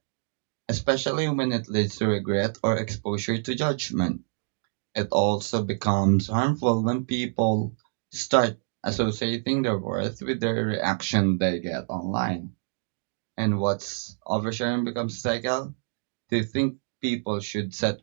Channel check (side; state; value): left; silent; digital silence